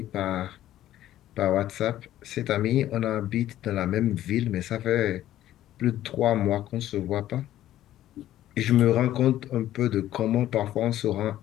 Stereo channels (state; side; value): quieter; right; 13.2 dB